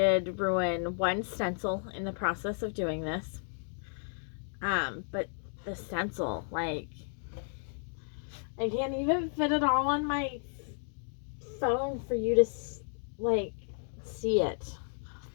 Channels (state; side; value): silent; right; 56 dB below the other